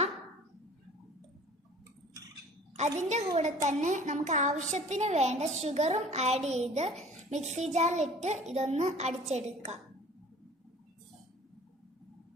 അതിന്റെ കൂടെ തന്നെ നമുക്ക് ആവശ്യത്തിന് വേണ്ട ഷുഗറും ആഡ് ചെയ്ത് മിക്സി ജാറിലിട്ട് ഇതൊന്ന് അടിച്ചെടുക്കാം.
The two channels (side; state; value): both; normal; correlation 0.48